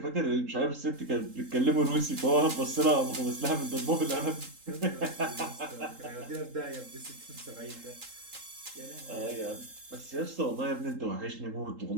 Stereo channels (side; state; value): left; late; 3.8 ms